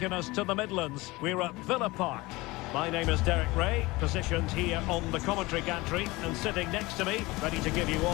us to the Midlands. We're at Villa Park. My name is Derek Ray, positioned here on the commentary gantry, and sitting next to me, ready to give you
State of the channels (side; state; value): right; quieter; 21.6 dB